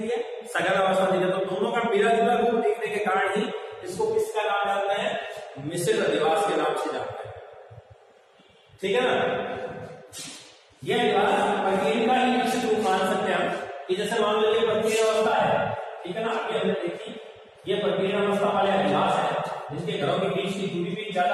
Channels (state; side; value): identical; both; correlation 1.00